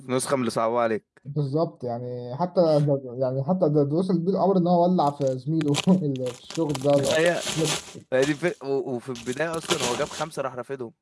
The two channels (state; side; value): identical; both; correlation 1.00